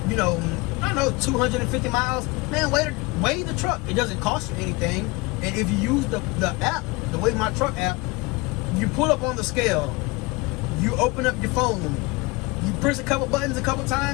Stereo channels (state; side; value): quieter; right; 24.4 dB